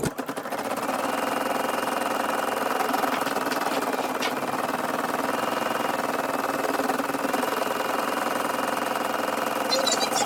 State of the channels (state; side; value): identical; both; correlation 1.00